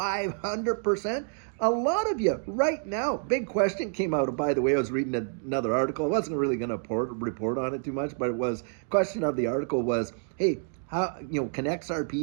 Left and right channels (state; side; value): silent; left; 59 dB below the other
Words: A lot of you right now, big question came out. By the way, I was reading another article. I wasn't really going to report on it too much, but it was, question of the article was, hey, how, can